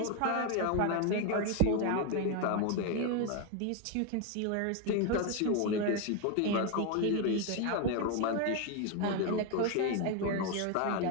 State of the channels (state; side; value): different; both; correlation 0.01